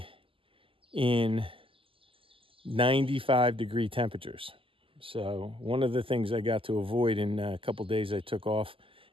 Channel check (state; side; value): late; left; 0.25 ms